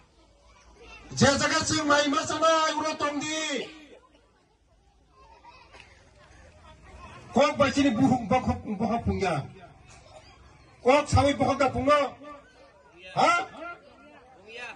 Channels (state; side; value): identical; both; correlation 1.00